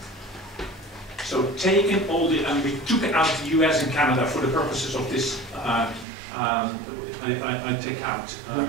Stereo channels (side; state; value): left; drops out; at 6.1 s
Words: So taking all the, and we took out the US and Canada for the purposes of this, I take out a